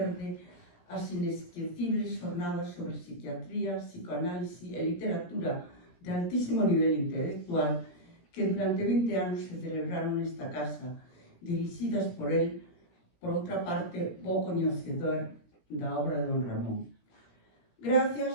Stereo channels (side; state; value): right; late; 17 ms